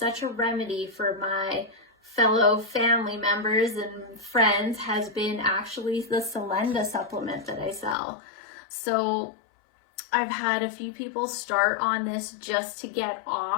a remedy for my fellow family members and friends has been actually the Solenda supplement that I sell. So I've had a few people start on this just to get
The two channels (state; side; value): drops out; right; at 8.0 s